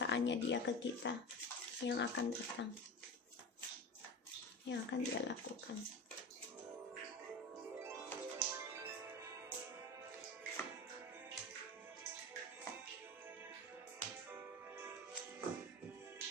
dia ke kita yang akan datang, yang akan dia lakukan.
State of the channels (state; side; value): normal; both; correlation 0.29